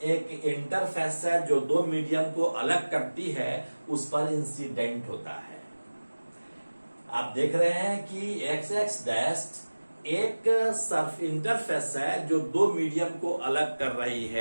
एक इंटरफेस है जो दो मीडियम को अलग करती है, उस पर इंसिडेंट होता है। आप देख रहे हैं कि एक्स एक्स डैश एक सर्फ इंटरफेस है जो दो मीडियम को अलग कर रही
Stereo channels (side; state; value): both; inverted; correlation -1.00